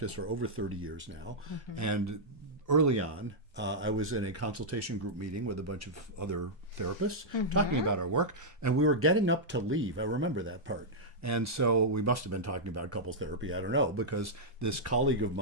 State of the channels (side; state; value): both; normal; correlation -0.08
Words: for over 30 years now. And early on, I was in a consultation group meeting with a bunch of other therapists talking about our work, and we were getting up to leave. I remember that part. And so we must have been talking about couples therapy. I don't know, because this colleague of